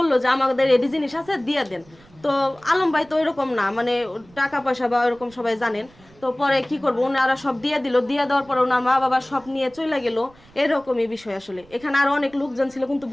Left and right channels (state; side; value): noise; right; rumble, 27 dB below the sound